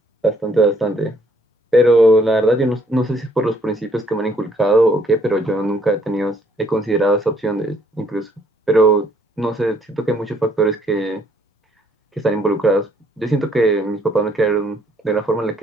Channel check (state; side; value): normal; both; correlation 0.65